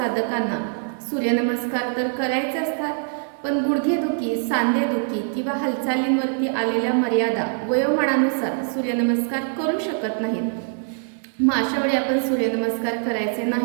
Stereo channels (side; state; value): left; silent; 61 dB below the other